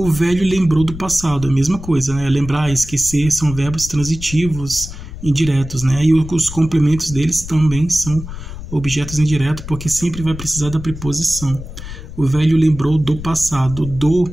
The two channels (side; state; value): left; noise; rumble, 11 dB below the sound